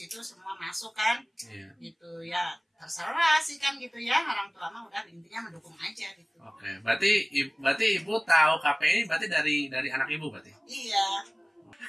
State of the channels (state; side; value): identical; both; correlation 1.00